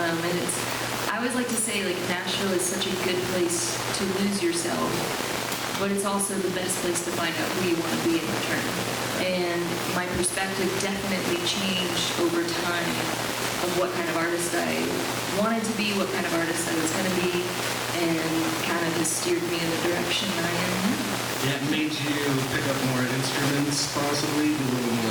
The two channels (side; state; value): both; identical; correlation 1.00